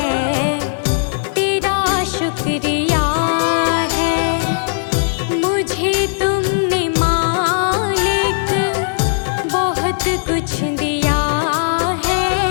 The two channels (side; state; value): right; silent; 68 dB below the other